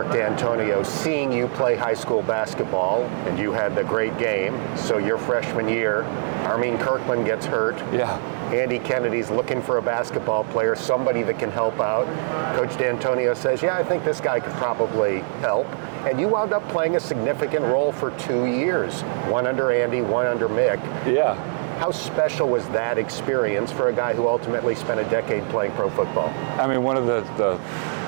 D'Antonio seeing you play high school basketball, and you had the great game. So your freshman year, Armin Kirkland gets hurt. Yeah. Andy Kennedy's looking for a basketball player, somebody that can help out. Coach D'Antonio says, yeah, I think this guy could probably help. And you wound up playing a significant role for 2 years, one under Andy, one under Mick. Yeah. How special was that experience for a guy who ultimately spent a decade playing pro football? I mean, one of the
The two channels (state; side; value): silent; left; 63 dB below the other